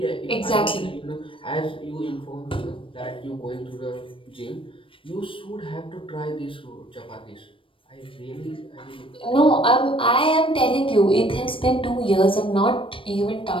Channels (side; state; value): right; late; 0.25 ms